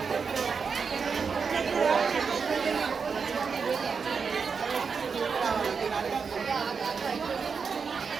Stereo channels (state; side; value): quieter; left; 5.6 dB